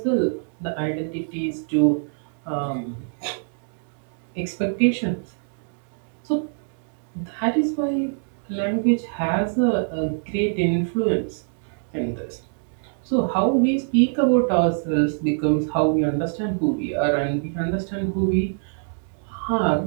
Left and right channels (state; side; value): silent; left; 62 dB below the other